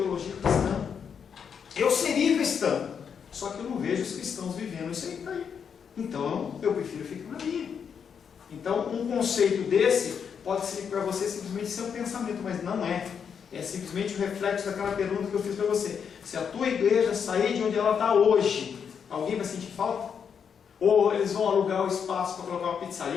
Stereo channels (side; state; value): right; quieter; 7.1 dB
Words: cristã. Eu seria cristão, só que eu não vejo os cristãos vivendo isso aí. Então, eu prefiro ficar na minha. Então, um conceito desse pode ser para você simplesmente ser um pensamento, mas não é. É simplesmente o reflexo daquela pergunta que eu fiz para você. Se a tua igreja sair de onde ela está hoje, alguém vai sentir falta? Ou eles vão alugar o espaço para colocar uma